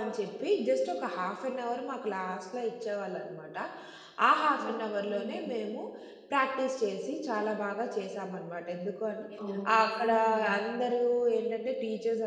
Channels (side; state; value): both; identical; correlation 1.00